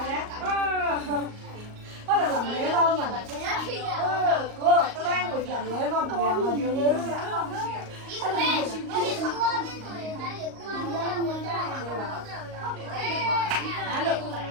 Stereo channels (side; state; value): left; late; 38 ms